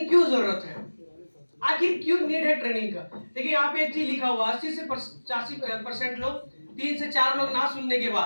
क्यों जरूरत है, आखिर क्यों नीड है ट्रेनिंग का? देखिए यहाँ पे एक चीज लिखा हुआ, 80 से 85% लोग, 3 से 4 लोग ना सुनने के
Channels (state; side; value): inverted; both; correlation -1.00